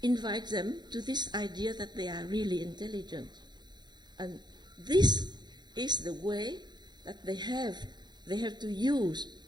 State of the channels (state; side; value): late; left; 0.21 ms